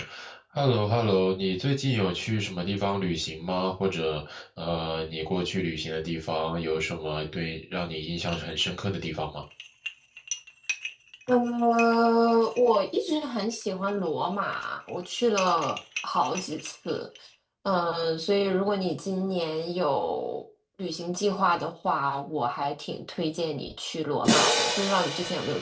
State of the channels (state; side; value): identical; both; correlation 1.00